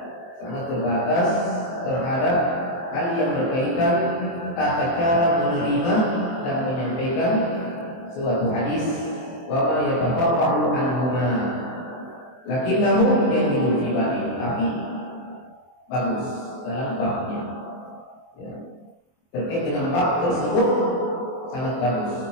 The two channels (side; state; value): right; late; 23 ms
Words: sangat terbatas terhadap hal yang berkaitan tata cara menerima dan menyampaikan suatu hadis, wa ma yatafarra'u anhuma lakinnahu jayyidun fi babi, tapi bagus dalam babnya. Ya. Terkait dengan bab tersebut sangat bagus,